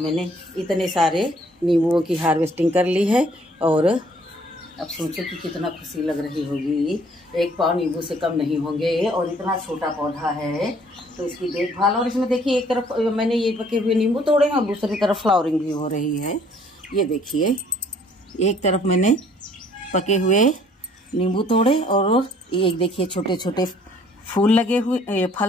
इतने सारे नींबुओं की हार्वेस्टिंग कर ली है। और अब सोचो कि कितना खुशी लग रही होगी। एक पाव नींबू से कम नहीं होंगे, और इतना छोटा पौधा है तो इसकी देखभाल। और इसमें देखिए एक तरफ मैंने ये पके हुए नींबू तोड़े हैं और दूसरी तरफ फ्लावरिंग भी हो रही है। ये देखिए एक तरफ मैंने पके हुए नींबू तोड़े और एक देखिए छोटे छोटे फूल लगे हुए,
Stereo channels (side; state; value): both; normal; correlation 0.60